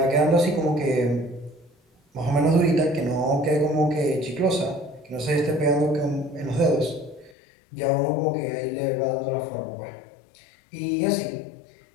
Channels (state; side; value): drops out; right; at 7.3 s